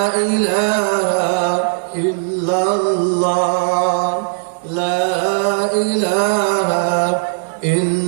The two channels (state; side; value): silent; left; digital silence